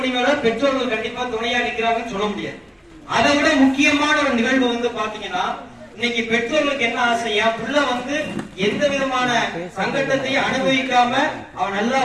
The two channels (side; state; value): both; identical; correlation 1.00